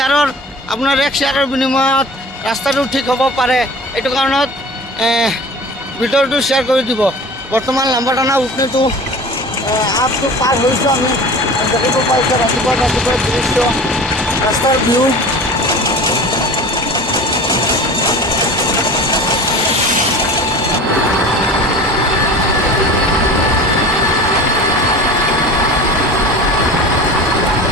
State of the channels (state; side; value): normal; both; correlation 0.38